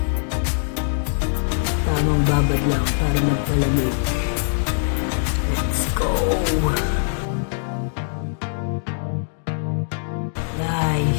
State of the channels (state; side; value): silent; right; digital silence